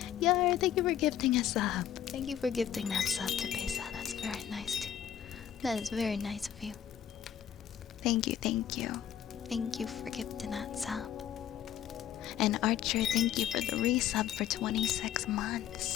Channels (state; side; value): quieter; right; 10.3 dB